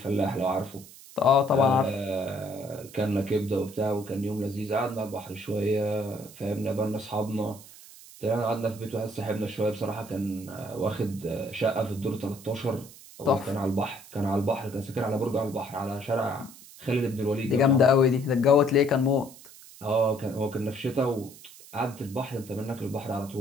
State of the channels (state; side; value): noise; right; hiss, 19 dB below the sound